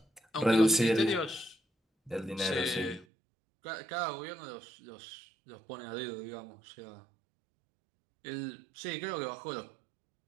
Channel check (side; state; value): left; drops out; at 3.1 s